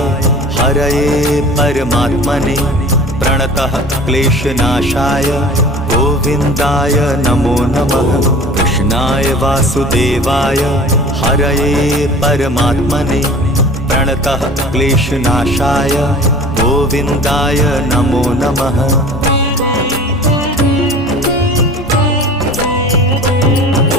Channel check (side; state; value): both; normal; correlation 0.42